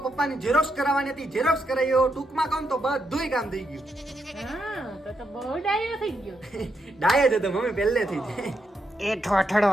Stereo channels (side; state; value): both; normal; correlation 0.81